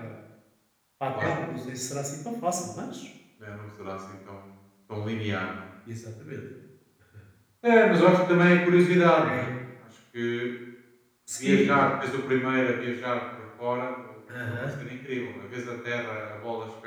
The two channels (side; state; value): both; identical; correlation 1.00